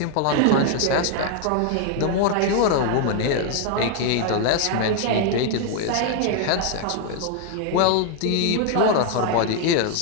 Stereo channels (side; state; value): both; different; correlation 0.00